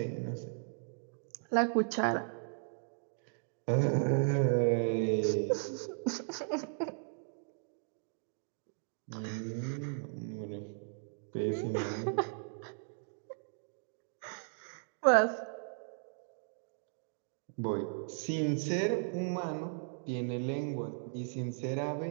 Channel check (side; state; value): left; silent; digital silence